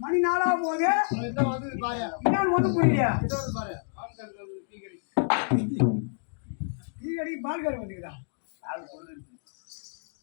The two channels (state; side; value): silent; right; digital silence